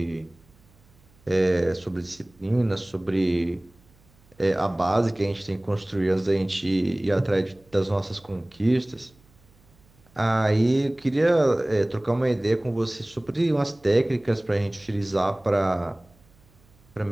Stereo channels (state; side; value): noise; right; hum, 30 dB below the sound